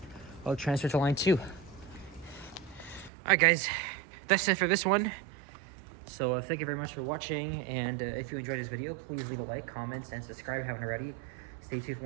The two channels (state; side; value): drops out; left; at 3.1 s